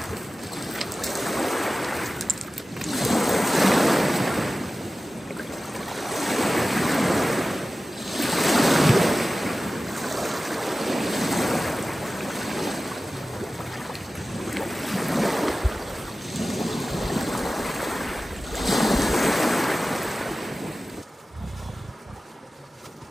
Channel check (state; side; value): normal; both; correlation 0.95